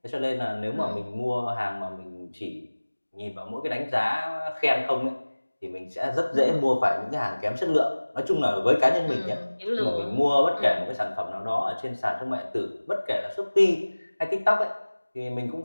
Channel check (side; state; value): both; inverted; correlation -1.00